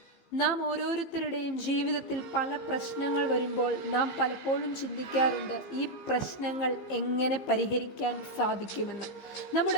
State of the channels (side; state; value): right; late; 15 ms